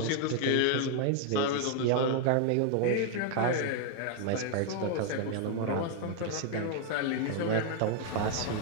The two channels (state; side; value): different; both; correlation 0.00